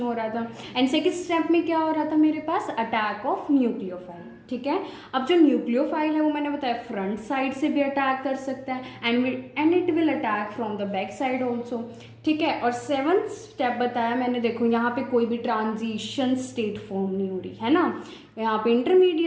हो रहा था, एंड सेकंड स्टेप में क्या हो रहा था मेरे पास, अटैक ऑफ न्यूक्लियोफाइल. ठीक है, अब जो न्यूक्लियोफाइल है वो मैंने बताया फ्रंट साइड से भी अटैक कर सकता है and it will attack from the back side also. ठीक है, और 7th स्टेप बताया मैंने, देखो यहाँ पे कोई भी ट्रांजिशन स्टेट फॉर्म नहीं हो रही है ना, यहाँ पे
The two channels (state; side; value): identical; both; correlation 1.00